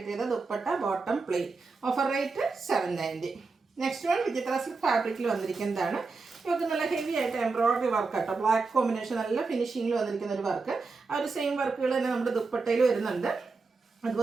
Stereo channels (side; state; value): left; quieter; 4.2 dB